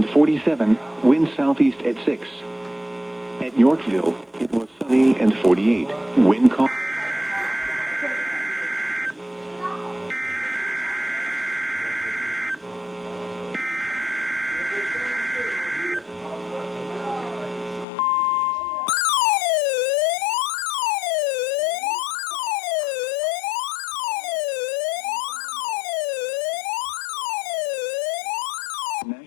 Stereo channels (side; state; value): right; drops out; at 17.9 s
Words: 47, wind southeast at 6. At Yorkville, it was sunny and 48, wind calm.